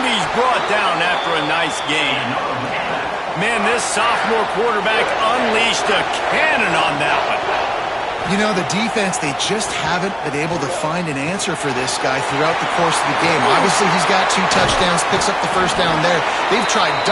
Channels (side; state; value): both; identical; correlation 1.00